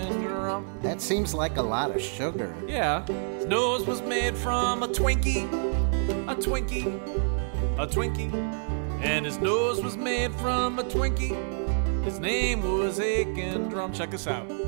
That seems like a lot of sugar. Yeah. His nose was made from a Twinkie. And his nose was made from a Twinkie. His name was Aiken. Check this out.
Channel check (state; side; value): silent; left; digital silence